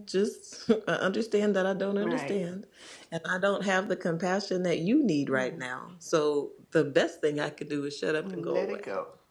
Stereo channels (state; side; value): identical; both; correlation 1.00